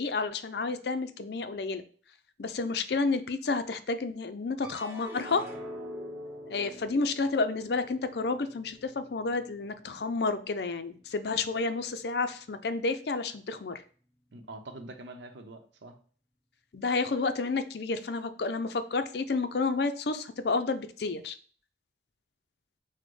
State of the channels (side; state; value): right; quieter; 3.4 dB